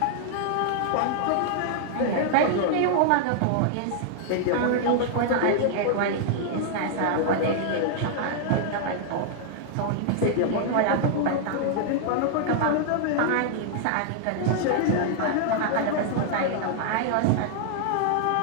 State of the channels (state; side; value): different; both; correlation -0.01